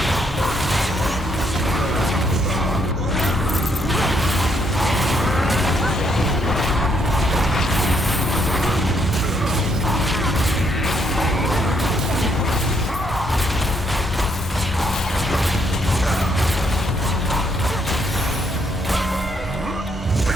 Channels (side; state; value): both; normal; correlation 0.72